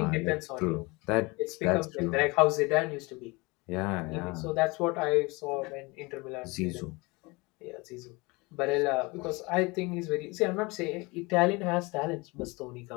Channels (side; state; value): right; quieter; 25.4 dB